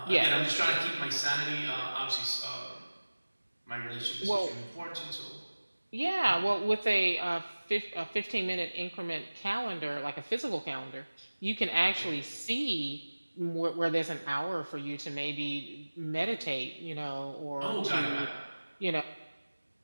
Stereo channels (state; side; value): inverted; both; correlation -1.00